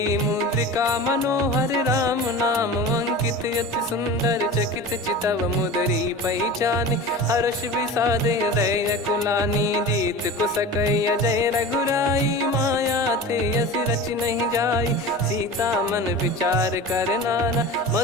मुद्रिका मनोहर। राम नाम अंकित अति सुंदर, चकित चितव मुदरी पहचान। हर्ष विषाद हृदय कुलानी, जीत को सकय जय रघुराई। माया थे यस रच नहीं जाई, सीता मन विचार कर नाना।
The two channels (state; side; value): normal; both; correlation 0.33